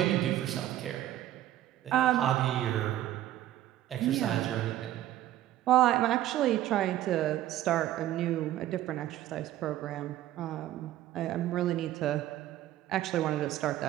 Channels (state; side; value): quieter; left; 13.4 dB